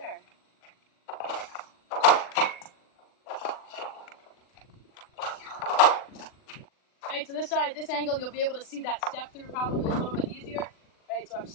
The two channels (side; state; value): right; late; 40 ms